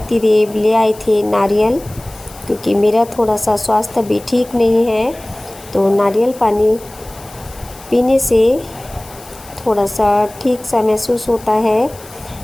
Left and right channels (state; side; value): noise; left; hiss, 20 dB below the sound